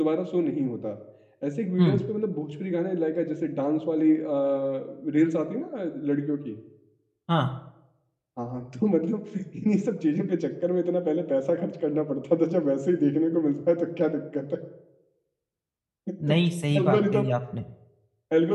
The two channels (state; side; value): identical; both; correlation 1.00